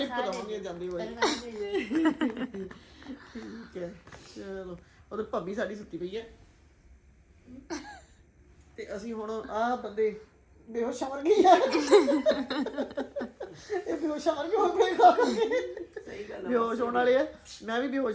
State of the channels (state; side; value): identical; both; correlation 1.00